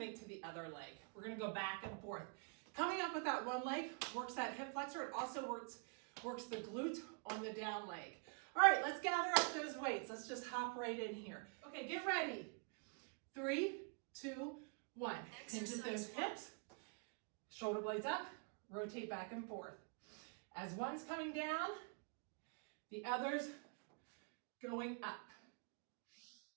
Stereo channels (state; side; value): quieter; left; 38.3 dB